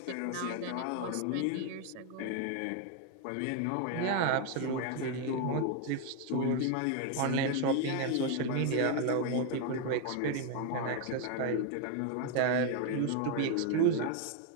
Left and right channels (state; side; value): different; both; correlation 0.01